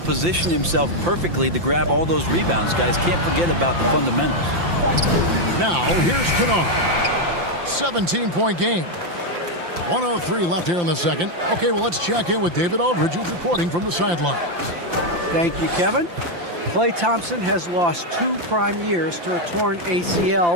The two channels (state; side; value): late; left; 5.8 ms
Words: himself perfectly to grab all those rebounds. Guys, can't forget about the fundamentals. Now, here's Kennard. 17-point game. 1:03 left here in the second. Okay, well, let's check in with David Aldridge, who's reporting from the sidelines. Thank you, Kevin. Klay Thompson has lost 2 prime years to a torn